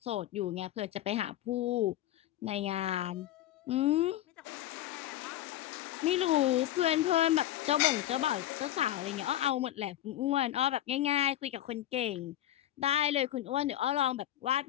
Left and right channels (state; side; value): quieter; right; 13.1 dB